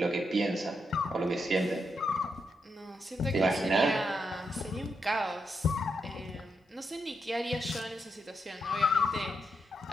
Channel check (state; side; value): normal; both; correlation 0.82